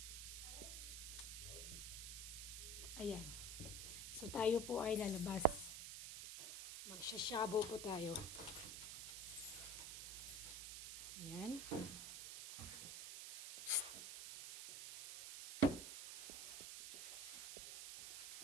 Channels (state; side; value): noise; right; hiss, 6 dB below the sound